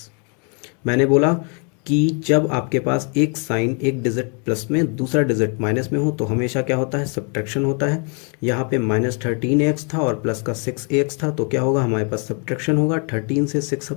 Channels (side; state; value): right; quieter; 37.7 dB